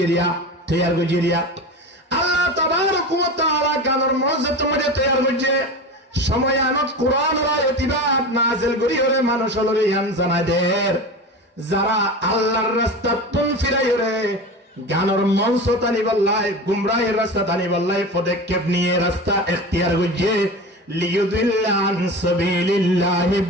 তৈয়ার গজিরিয়া আল্লাহ তাবারক ওয়া তাআলা গানের মঞ্চ তোমাদের তৈয়ার করছে সময় আনত কোরআনের আয়াতিবাদ নাযিল করি হলে মানুষ হলরে ইয়ান জানাদের যারা আল্লাহর রাস্তা তুন ফিরাই রে গানের মঞ্চ তানি বল্লাই গুমরাহের রাস্তা তানি বল্লাই পদক্ষেপ নিয়ে রাস্তা ইখতিয়ার করছে লিয়ুদিল্লা আন সাবিলিল্লাহি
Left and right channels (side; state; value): both; normal; correlation 0.29